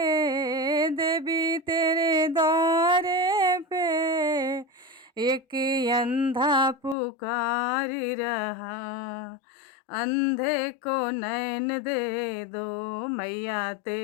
देवी तेरे द्वारे पे, एक अंधा पुकार रहा। अंधे को नैन दे दो मैया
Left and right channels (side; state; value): right; drops out; at 7.0 s